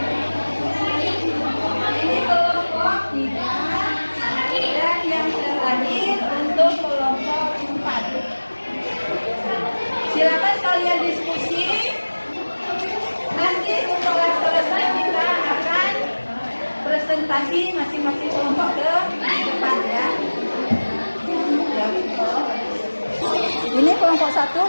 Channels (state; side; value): inverted; both; correlation -1.00